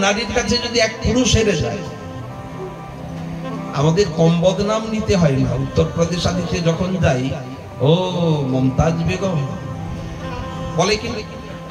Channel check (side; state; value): both; identical; correlation 1.00